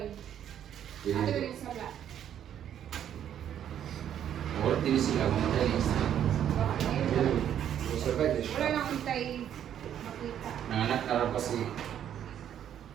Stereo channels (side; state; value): left; quieter; 10.0 dB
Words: Pwede Ano dito. yung sala? Wala din sila, mga talis. Survive na siya. Wala nang hintay makita. Nanganak na rin kasi.